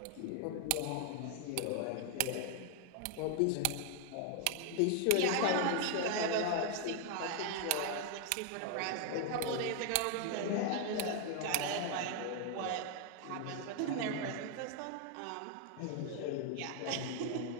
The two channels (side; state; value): both; different; correlation 0.00